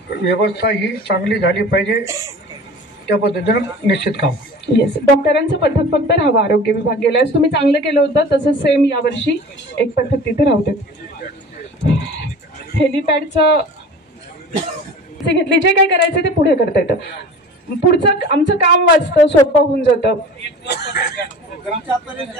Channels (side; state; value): both; normal; correlation 0.40